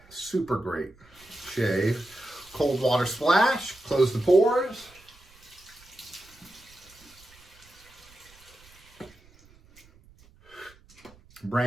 shave. Cold water splash, close the pores.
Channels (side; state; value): right; noise; rumble, 27 dB below the sound